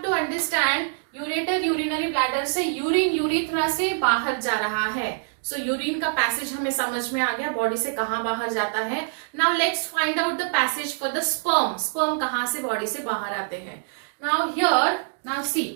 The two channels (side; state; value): left; silent; digital silence